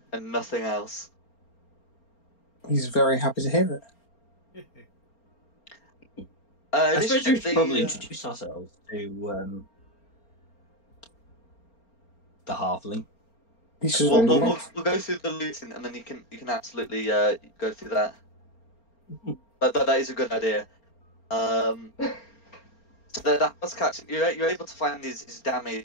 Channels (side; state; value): right; late; 4.4 ms